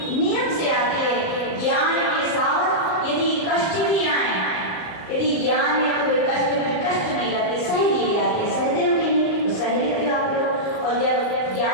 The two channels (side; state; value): right; late; 38 ms